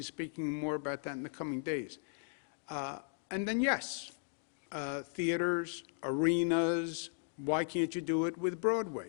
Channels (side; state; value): right; silent; digital silence